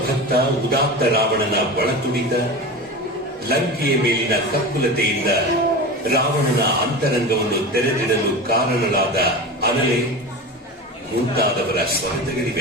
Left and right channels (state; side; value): normal; both; correlation 0.28